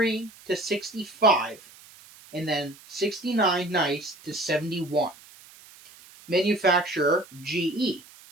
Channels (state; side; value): noise; right; hiss, 22 dB below the sound